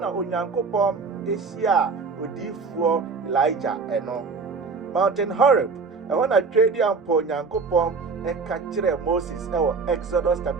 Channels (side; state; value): left; quieter; 4.7 dB